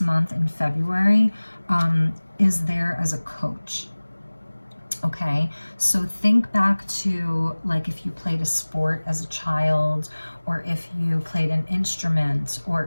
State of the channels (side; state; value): both; inverted; correlation -1.00